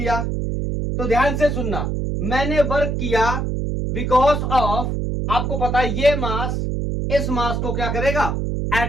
तो ध्यान से सुनना, मैंने वर्क किया बिकॉज ऑफ, आपको पता है ये मास इस मास को क्या करेगा,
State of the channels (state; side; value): noise; right; hum, 1 dB below the sound